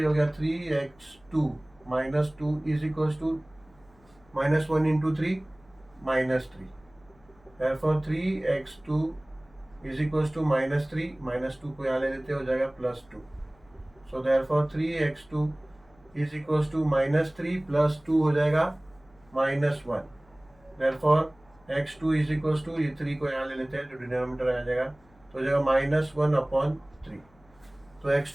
हो गया 3x2 minus 2 is equals to -1 into 3 -3। Therefore 3x2 is equals to -3, -2 को यहाँ ले लेते हो जाएगा +2। So therefore 3x2 is equals to -3 +2 हो जाएगा -1। Therefore x2 is equals to, ये 3 को यहाँ ले लेते हैं, जो डिनोमिनेटर आ जाएगा, तो हो जाएगा -1/3। तो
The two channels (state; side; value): noise; left; hum, 30 dB below the sound